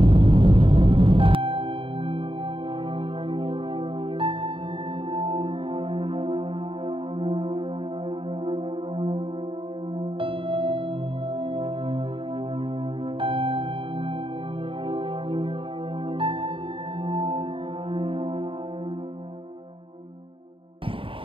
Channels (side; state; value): left; late; 0.25 ms